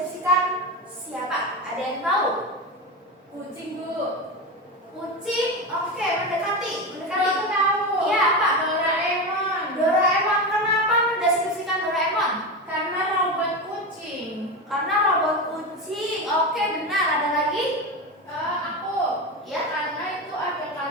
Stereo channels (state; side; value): normal; both; correlation 0.19